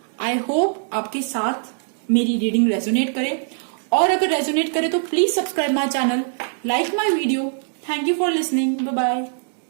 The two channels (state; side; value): silent; left; digital silence